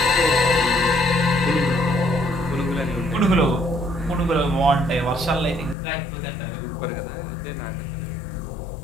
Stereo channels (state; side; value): drops out; right; at 5.8 s